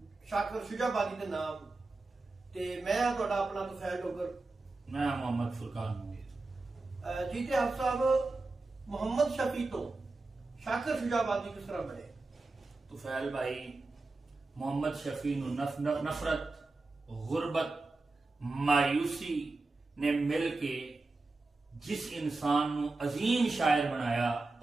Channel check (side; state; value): left; quieter; 3.4 dB